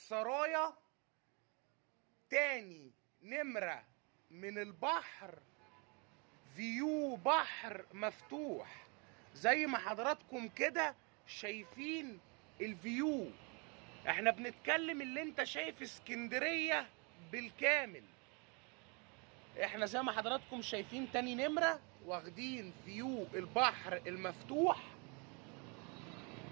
تاني نمرة من البحر، فيو بحر مفتوح زي ما حضراتكم كده شايفين الفيو. احنا بنتكلم اللي انت شايف اسكندرية بالكامل. احنا زي ما حضراتكم شايفين تاني نمرة واخدين فيو البحر المفتوح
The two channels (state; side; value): quieter; left; 32.8 dB